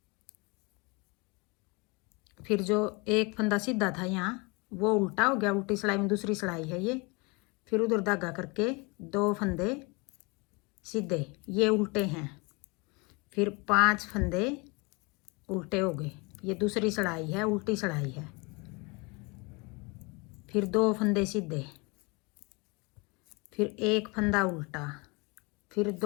फिर जो एक फंदा सीधा था यहाँ वो उल्टा हो गया, उल्टी सिलाई में दूसरी सिलाई है ये। फिर उधर धागा करके 2 फंदे सीधे, ये उल्टे हैं, फिर 5 फंदे उल्टे हो गए, ये दूसरी सिलाई है, उल्टी सिलाई है। फिर 2 फंदे सीधे, फिर 1 फंदा उल्टा, फिर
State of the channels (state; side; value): quieter; right; 28.3 dB